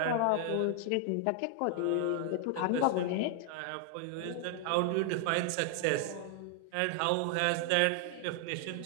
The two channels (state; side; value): different; both; correlation 0.00